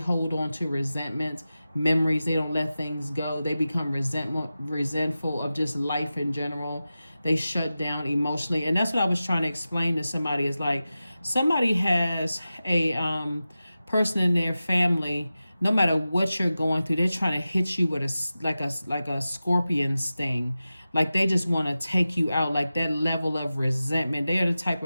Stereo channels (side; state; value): both; inverted; correlation -0.94